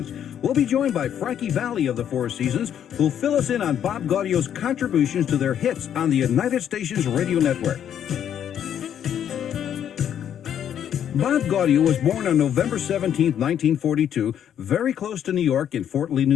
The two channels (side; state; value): right; quieter; 9.5 dB